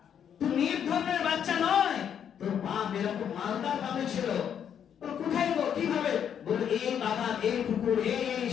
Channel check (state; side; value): quieter; right; 8.6 dB